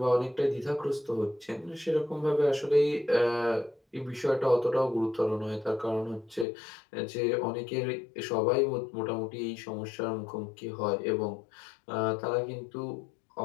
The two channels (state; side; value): drops out; right; at 6.5 s